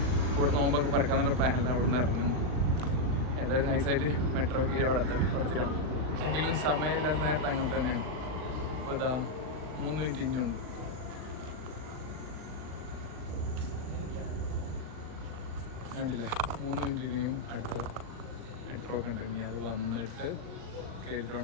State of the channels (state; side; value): late; left; 39 ms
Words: കൂടെ നോമ്പൊക്കെ പറക്കാന്നുള്ള പ്ലാനില്ല. അവിടെ നിന്ന് ഇറങ്ങും. ഏതായാലും നൈസായിട്ട് മെട്രോ കയറി അവിടെ തരാം. എങ്കിലും സമയമില്ലാത്ത നേരത്തെ അങ്ങനെ തന്നെയാണ്. ഇപ്പോൾ ഇതാ 3 മിനിറ്റ് ഇനിയുണ്ട്. കണ്ടില്ലേ, 3 മിനിറ്റ് ഇനിയും അടുത്ത മെട്രോ ഒക്കെ ഉണ്ട്. ഇനി അത് വന്നിട്ട് കയറിയിട്ട്